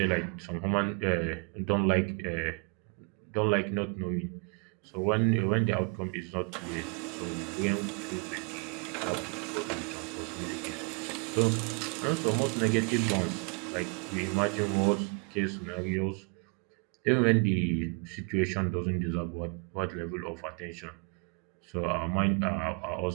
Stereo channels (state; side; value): quieter; left; 35.4 dB